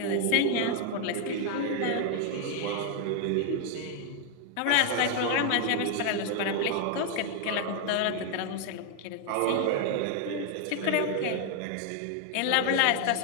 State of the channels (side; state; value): both; different; correlation 0.00